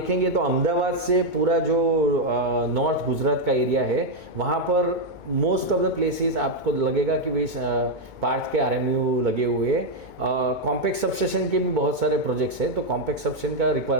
तो अहमदाबाद से पूरा जो नॉर्थ गुजरात का एरिया है वहाँ पर मोस्ट ऑफ द प्लेसेस आपको लगेगा कि भाई पार्थ के RMU लगे हुए हैं। कॉम्पैक्ट सबस्टेशन के भी बहुत सारे प्रोजेक्ट्स हैं, तो कॉम्पैक्ट सबस्टेशन का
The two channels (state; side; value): late; left; 2.2 ms